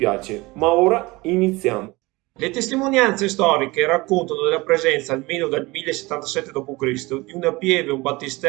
ma ora iniziamo. Le testimonianze storiche raccontano della presenza, almeno dal 1077 d.C., di una pieve, un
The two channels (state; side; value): quieter; left; 22.5 dB